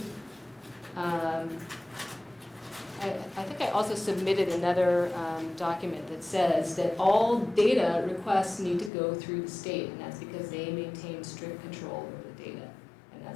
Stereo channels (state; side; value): drops out; right; at 8.9 s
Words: I think I also submitted another document that says that all data requests need to go through the state, and that's because they maintain strict control over the data, and